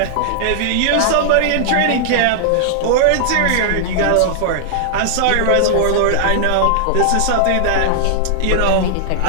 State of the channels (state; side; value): different; both; correlation -0.01